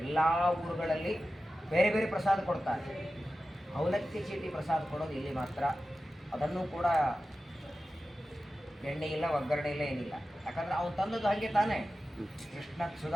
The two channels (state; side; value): normal; both; correlation 0.93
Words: ಎಲ್ಲ ಊರುಗಳಲ್ಲಿ ಬೇರೆ ಬೇರೆ ಪ್ರಸಾದ ಕೊಡ್ತಾರೆ, ಅವಲಕ್ಕಿ ಚೀಟಿ ಪ್ರಸಾದ ಕೊಡೋದು ಇಲ್ಲಿ ಮಾತ್ರ. ಅದನ್ನು ಕೂಡ ಎಣ್ಣೆ ಇಲ್ಲ, ಒಗ್ಗರಣೆ ಇಲ್ಲ, ಏನಿಲ್ಲ. ಯಾಕಂದರೆ ಅವನು ತಂದದ್ದು ಹಾಗೆ ತಾನೇ. ಕೃಷ್ಣ